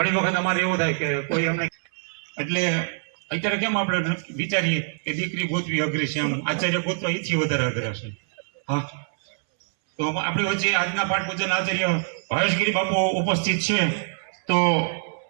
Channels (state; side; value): silent; left; 62 dB below the other